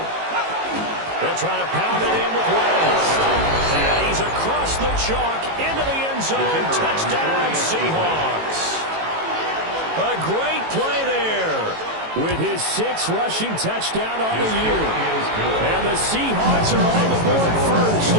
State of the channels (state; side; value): late; left; 18 ms